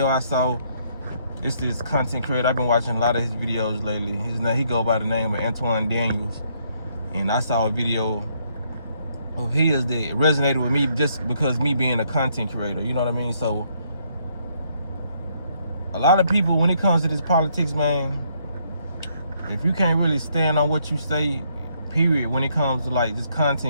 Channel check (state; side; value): inverted; both; correlation -0.71